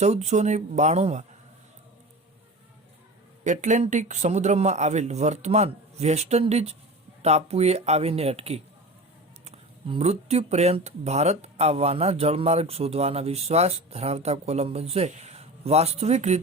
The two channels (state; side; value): normal; both; correlation 0.32